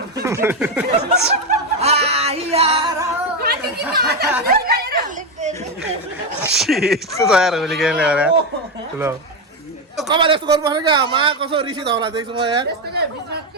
यस्तो तयार होली खेल्ने अरे ल कमाल यस्तो गर्नुपर्छ क्या मा कसो रिसिद होला देख्छु म यार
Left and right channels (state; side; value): normal; both; correlation 0.09